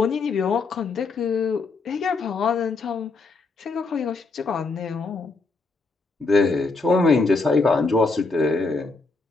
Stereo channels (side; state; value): right; quieter; 3.9 dB